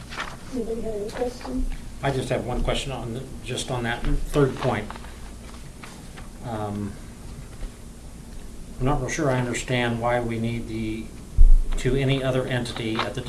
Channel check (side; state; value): both; identical; correlation 1.00